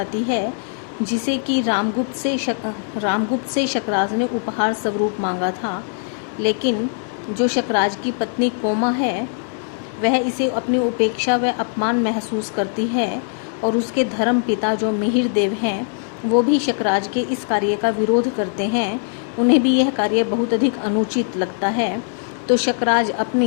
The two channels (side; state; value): right; silent; 64 dB below the other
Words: है, जिसे कि रामगुप्त से शकराज ने उपहार स्वरूप मांगा था। लेकिन जो शकराज की पत्नी कोमा है, वह इसे अपनी उपेक्षा व अपमान महसूस करती है और उसके धर्म पिता जो मिहिर देव हैं, वो भी शकराज के इस कार्य का विरोध करते हैं। उन्हें भी यह कार्य बहुत अधिक अनुचित लगता है। तो शकराज